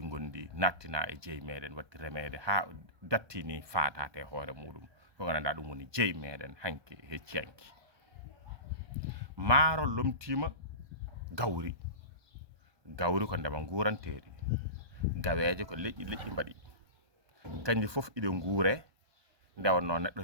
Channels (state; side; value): late; left; 1.2 ms